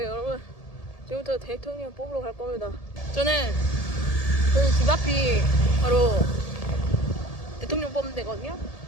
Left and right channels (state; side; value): late; right; 1.7 ms